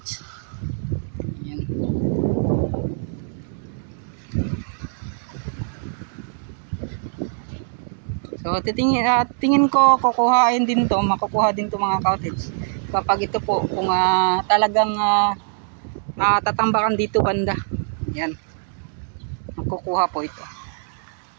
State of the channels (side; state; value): left; silent; digital silence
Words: So tingin ko kukuhain din to, makukuha din to mga cottage kapag ito po kung talagang tatambakan dito banda. Yan, makukuha po ito.